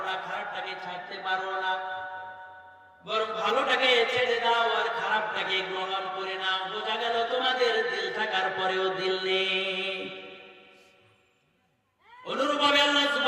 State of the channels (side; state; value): both; identical; correlation 1.00